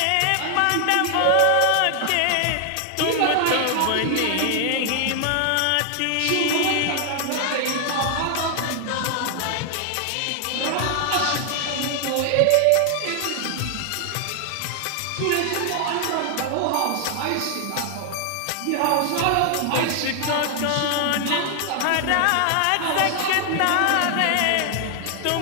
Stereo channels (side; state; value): both; different; correlation 0.00